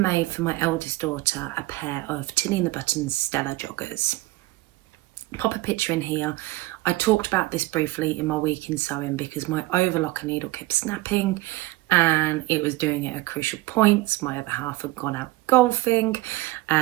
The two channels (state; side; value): quieter; left; 19.3 dB